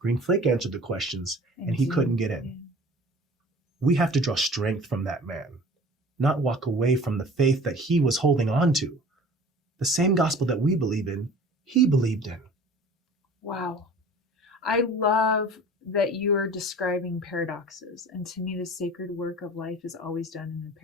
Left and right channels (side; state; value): both; normal; correlation 0.44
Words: Flake answered the questions and he couldn't get in. We have to draw strength from that man, not walk away from the faith that he was holding on to. The same gospel that we believe in, he believed in. Wow. I love that you are describing paradoxes. And to me, the sacred work of life is always done in the